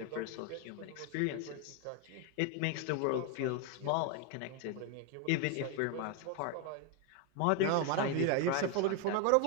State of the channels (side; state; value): both; different; correlation 0.01